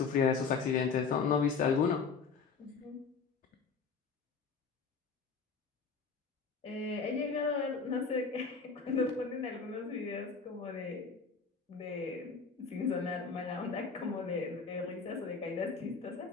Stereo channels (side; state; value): right; quieter; 5.2 dB